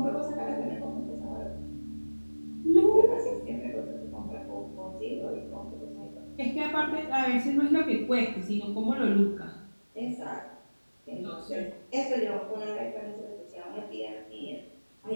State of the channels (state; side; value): inverted; both; correlation -1.00